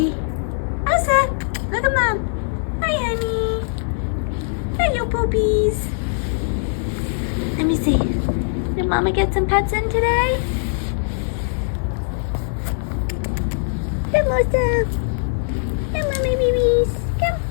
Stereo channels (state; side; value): silent; right; 65 dB below the other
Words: Osa, look at Mom. Hi, honey. Hello, poopies. Let me see. Did Mama get some pets in today? Come, Osa. Come, Mommy babies. Come.